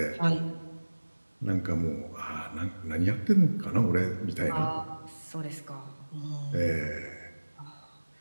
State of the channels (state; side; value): inverted; both; correlation -1.00